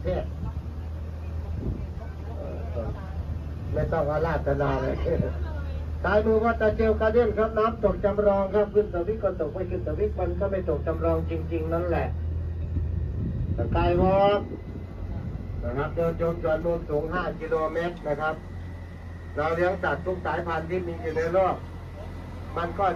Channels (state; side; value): identical; both; correlation 1.00